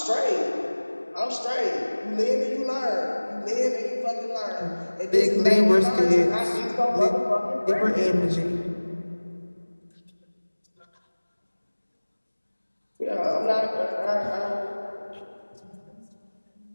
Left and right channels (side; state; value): both; inverted; correlation -1.00